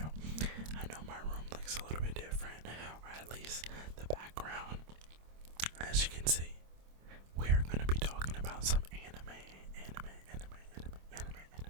I know my room looks a little bit different, or at least the background. As you can see, we are going to be talking about some anime.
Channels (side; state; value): left; late; 26 ms